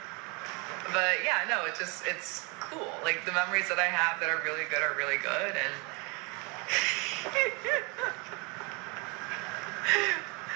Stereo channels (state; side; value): quieter; left; 30.2 dB